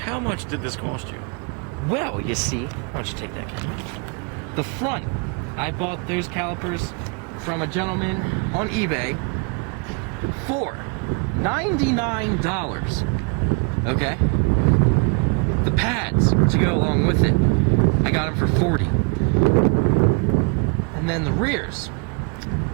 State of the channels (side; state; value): left; quieter; 35.0 dB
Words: how much did this cost you? Well, you see, why don't you take that camera? The front, I bought those calipers from a gentleman on eBay for $99. Okay? The pads to go along with it, I got them for $40. And then the rears,